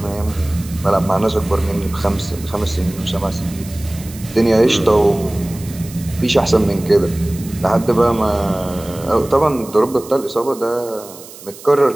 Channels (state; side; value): noise; right; hiss, 18 dB below the sound